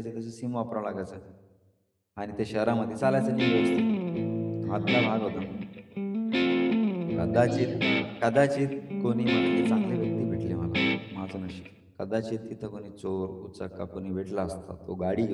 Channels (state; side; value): identical; both; correlation 1.00